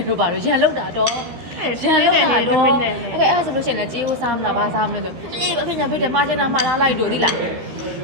လို့ပါလို့ရန်လောက်တာတော့ရန်လောက်တာတော့အဲ့ဒါဆိုလို့ရှိရင်လည်းကြေးဦးစားမလားဘာစားမလဲဆိုအေးအဖေညာဖေးတယ်မှားချင်တာမှားလားလိုက်တို့သိလား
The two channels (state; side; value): late; left; 13 ms